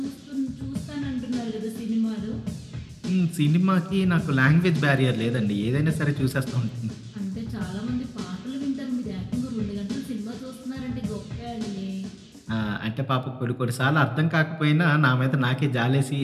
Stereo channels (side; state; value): both; identical; correlation 1.00